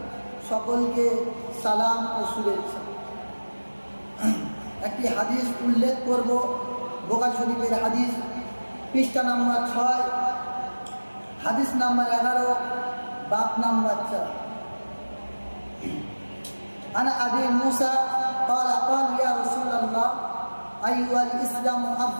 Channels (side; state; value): both; inverted; correlation -1.00